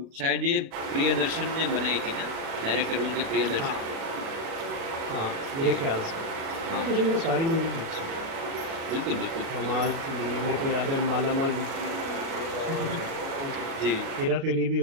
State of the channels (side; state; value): left; late; 37 ms